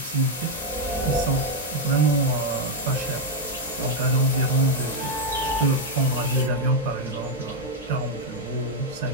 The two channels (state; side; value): normal; both; correlation 0.02